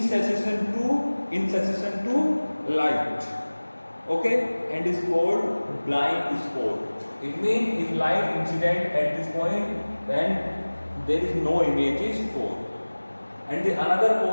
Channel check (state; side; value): inverted; both; correlation -1.00